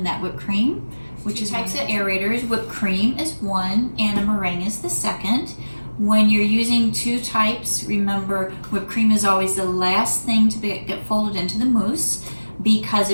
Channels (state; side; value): inverted; both; correlation -1.00